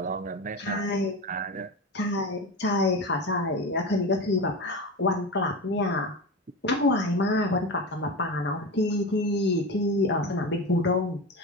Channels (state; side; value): normal; both; correlation 0.23